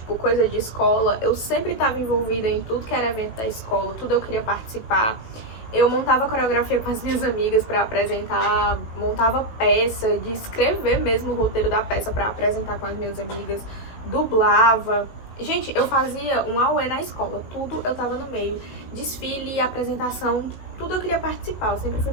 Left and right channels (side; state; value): right; late; 18 ms